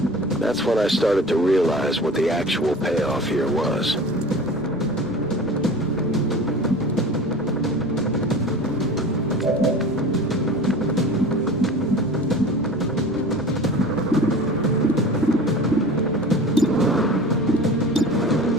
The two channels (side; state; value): right; noise; rumble, 23 dB below the sound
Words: That's when I started to realize what the actual payoff here was.